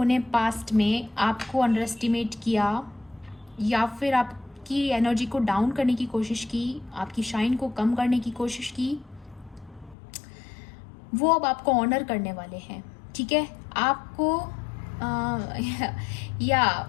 ने पास्ट में आपको अंडर एस्टिमेट किया या फिर आपकी एनर्जी को डाउन करने की कोशिश की, आपकी शाइन को कम करने की कोशिश की, वो अब आपको ऑनर करने वाले हैं, ठीक है। आपको या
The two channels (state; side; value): drops out; right; at 10.0 s